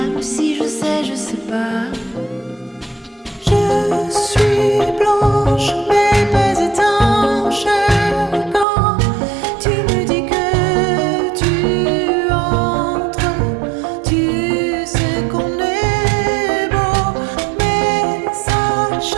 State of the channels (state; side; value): drops out; left; at 8.7 s